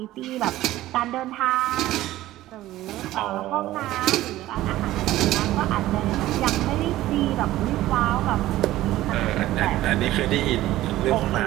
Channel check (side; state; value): left; quieter; 15.5 dB